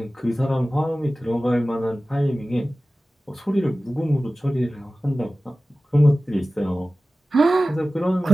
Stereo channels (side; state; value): both; normal; correlation 0.96